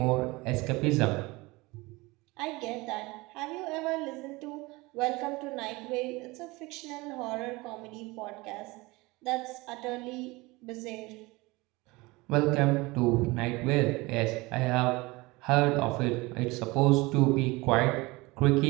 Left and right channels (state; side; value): quieter; left; 22.9 dB